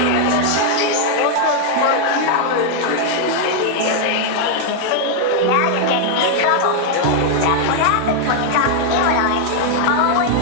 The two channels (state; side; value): different; both; correlation 0.00